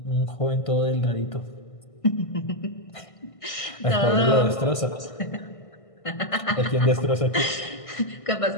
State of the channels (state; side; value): late; right; 1.6 ms